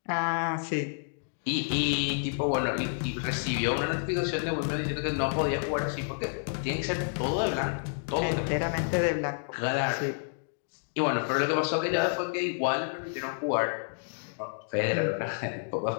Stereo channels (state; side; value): silent; right; digital silence